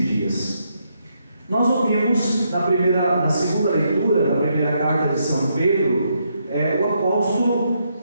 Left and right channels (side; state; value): both; inverted; correlation -0.78